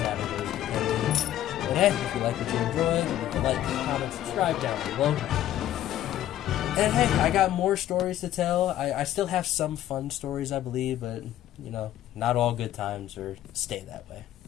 depending. And hey, if you like what you enjoyed, leave a like, comment, subscribe down below. And hey, I got more stories to tell. I still have some fun stories, I believe, but not all good times or stay that way.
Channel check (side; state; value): right; quieter; 12.7 dB